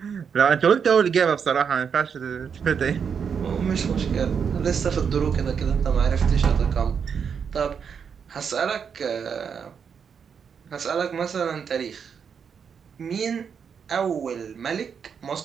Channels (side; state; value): left; quieter; 6.8 dB